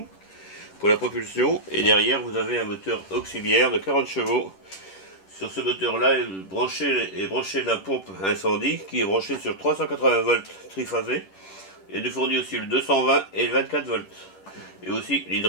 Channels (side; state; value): right; late; 10 ms